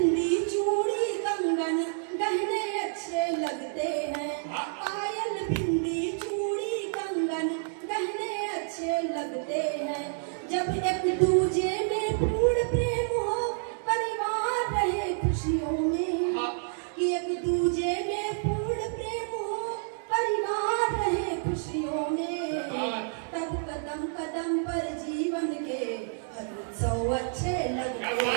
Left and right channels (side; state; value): left; silent; digital silence